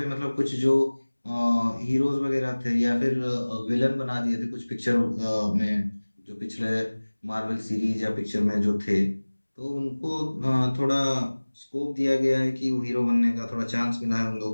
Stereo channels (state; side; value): inverted; both; correlation -1.00